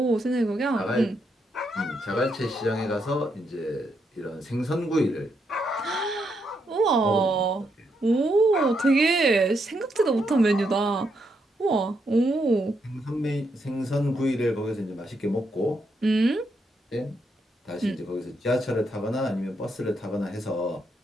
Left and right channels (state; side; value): normal; both; correlation 0.79